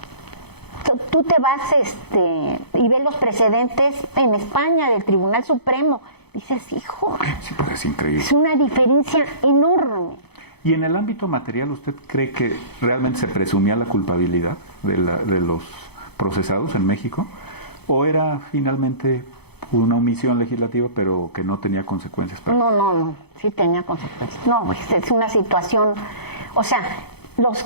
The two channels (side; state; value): right; late; 0.98 ms